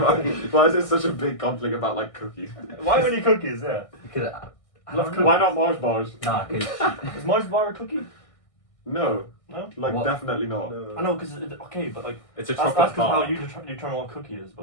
is it such a big conflict about like cookies? Why only cookies? Yeah. because I Love don't cookies. know. Why not Mars bars? Nah, because Is Mars bar a cookie? No, No. like What? definitely not. I know, because okay, but like It's a that's chocolate how bar. you determine what a cookie is.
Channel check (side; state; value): right; late; 1.6 ms